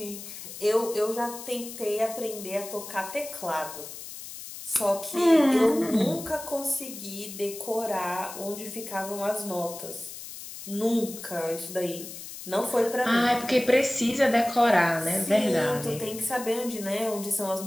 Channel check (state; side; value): noise; left; hiss, 12 dB below the sound